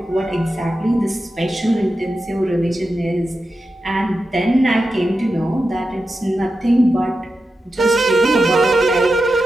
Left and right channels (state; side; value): normal; both; correlation 0.90